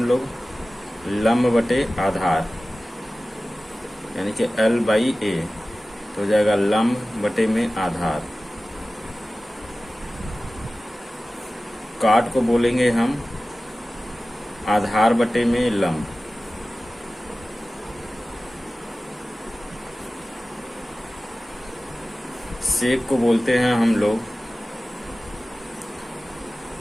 लोग लंब बटे आधार, यानी कि L/A। तो हो जाएगा लंब बटे में आधार। काट को बोलेंगे हम आधार बटे में लंब। सेक को बोलते हैं हम लोग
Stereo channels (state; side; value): normal; both; correlation 0.96